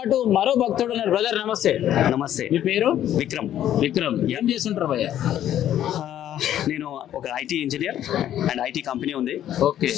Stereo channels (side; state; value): right; quieter; 11.4 dB